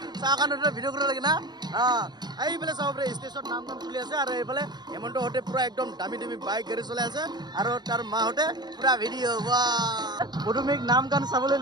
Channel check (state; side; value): late; left; 0.20 ms